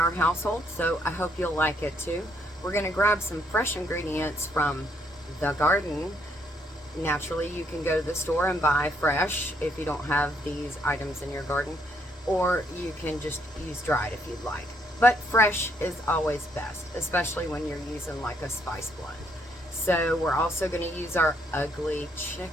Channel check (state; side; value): normal; both; correlation 0.72